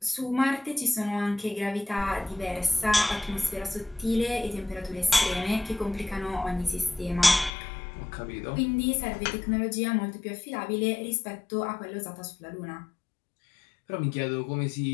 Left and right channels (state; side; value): drops out; right; at 7.5 s